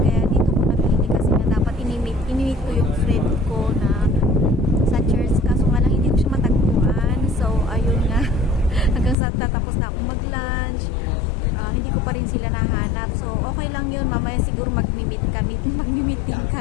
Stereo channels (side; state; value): right; drops out; at 9.2 s